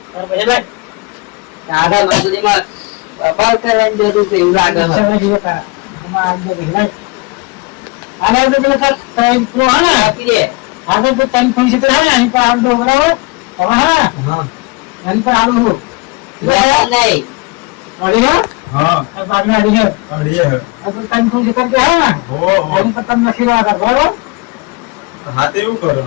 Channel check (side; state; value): right; quieter; 26.4 dB